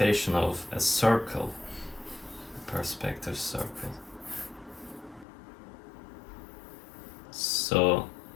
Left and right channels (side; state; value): right; drops out; at 5.2 s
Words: of a circle, a perspective circle. So